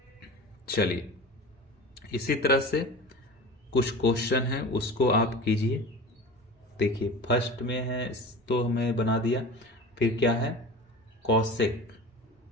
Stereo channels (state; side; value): normal; both; correlation 0.35